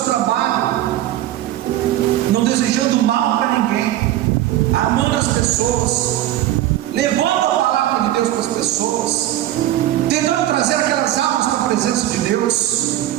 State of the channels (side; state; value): left; quieter; 13.8 dB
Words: trabalho, não desejando mal para ninguém, amando as pessoas, levando a palavra de Deus para as pessoas, tentando trazer aquelas almas para a presença de Deus.